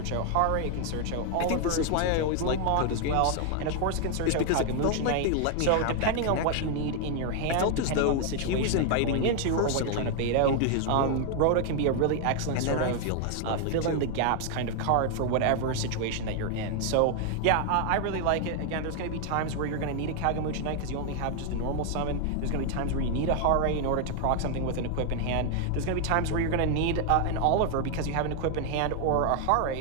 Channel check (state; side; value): different; both; correlation 0.00